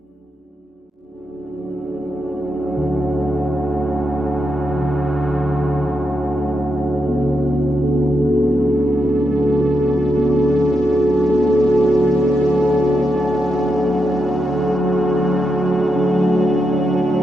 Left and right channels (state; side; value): normal; both; correlation 0.84